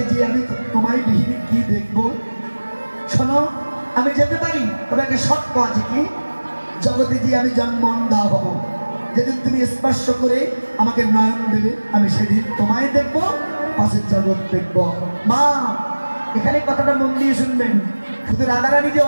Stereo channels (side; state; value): both; inverted; correlation -1.00